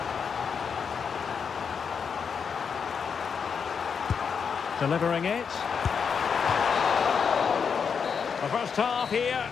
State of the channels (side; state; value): right; quieter; 6.4 dB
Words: Delivering it. The first half here